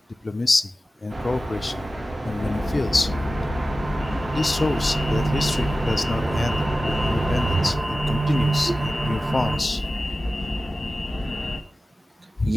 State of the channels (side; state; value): both; normal; correlation 0.95